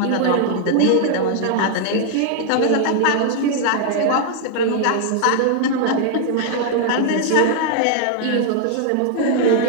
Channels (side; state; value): both; different; correlation 0.00